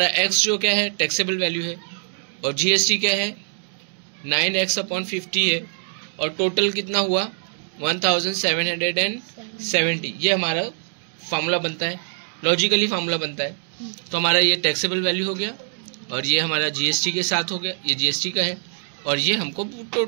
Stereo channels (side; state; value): left; silent; digital silence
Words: x जो क्या है टैक्सेबल वैल्यू है, और GST क्या है 9x/50 है, और टोटल कितना हुआ 1770। ये हमारा फार्मूला बनता है, लॉजिकली फार्मूला बनता है। तो हमारा ये टैक्सेबल वैल्यू हो गया, और ये हमारा GST के साथ हो गया, ये GST का है, और ये हमको